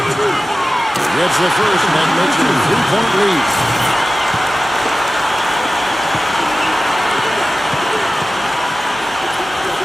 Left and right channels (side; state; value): both; normal; correlation 0.95